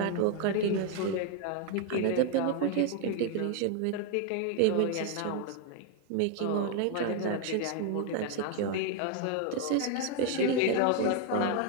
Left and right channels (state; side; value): different; both; correlation 0.01